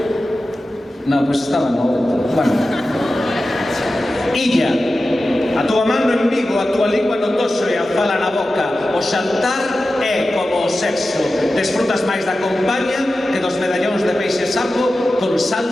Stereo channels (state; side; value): normal; both; correlation 0.94